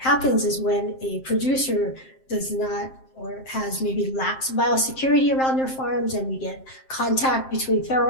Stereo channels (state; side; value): late; right; 7.6 ms